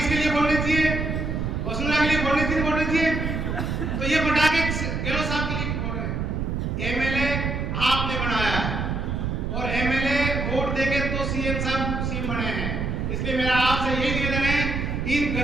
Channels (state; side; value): noise; right; rumble, 1 dB below the sound